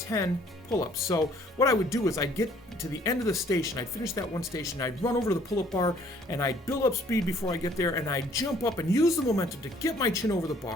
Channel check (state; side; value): normal; both; correlation 0.60